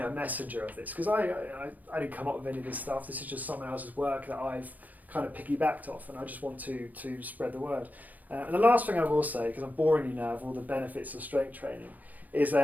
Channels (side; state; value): left; late; 0.080 ms